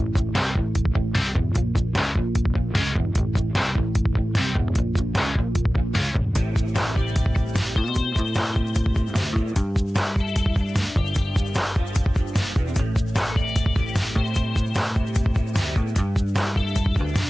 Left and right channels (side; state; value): both; normal; correlation 0.96